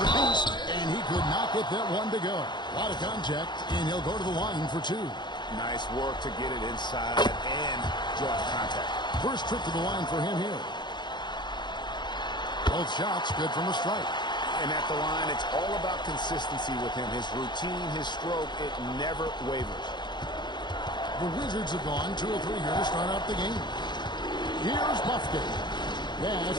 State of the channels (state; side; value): late; right; 0.21 ms